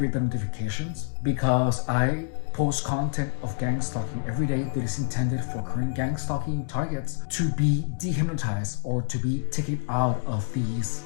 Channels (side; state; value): right; silent; digital silence